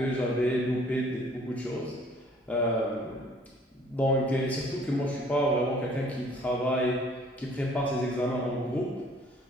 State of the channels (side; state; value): both; normal; correlation 0.57